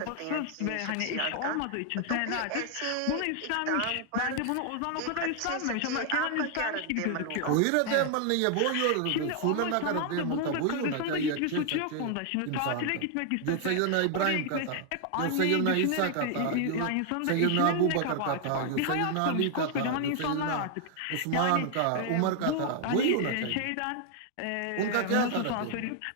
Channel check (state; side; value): different; both; correlation 0.00